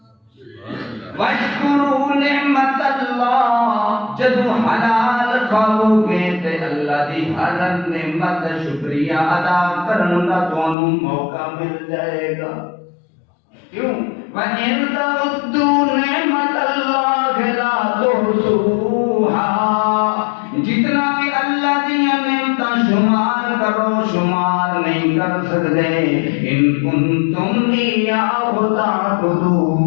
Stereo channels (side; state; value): right; drops out; at 10.8 s